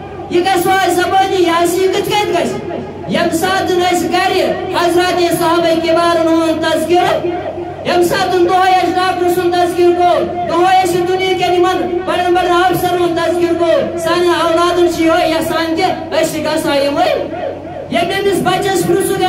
یہ گژھِ زبانی یہ کت کت گژھِ یم ساتن اس گھر حضرات صحابہ کبارن ہُنٛد تذکرہ یم ساتن دہے ڈاکٹر سن تذکر کو دہے دنیا کے بڑن بڑن افسر ہند تذکر کو سان اولادن یہ یسان کہ گھا یمس بچس پرسک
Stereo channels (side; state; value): both; identical; correlation 1.00